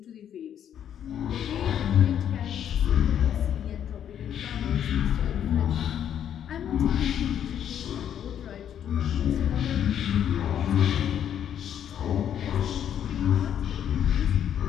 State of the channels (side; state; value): right; quieter; 9.6 dB